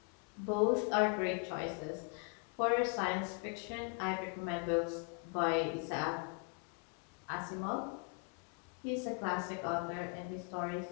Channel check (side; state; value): right; quieter; 34.9 dB